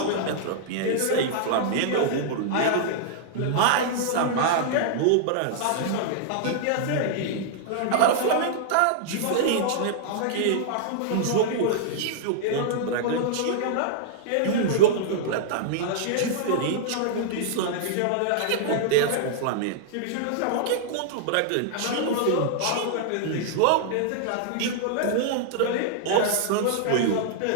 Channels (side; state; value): both; different; correlation -0.01